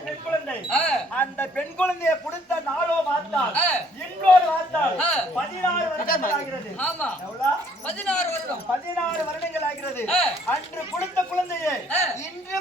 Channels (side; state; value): both; normal; correlation 0.62